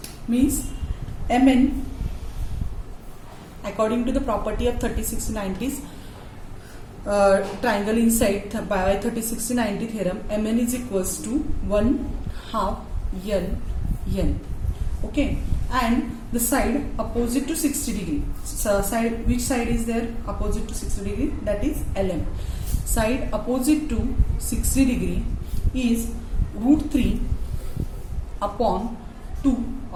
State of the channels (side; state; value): both; identical; correlation 1.00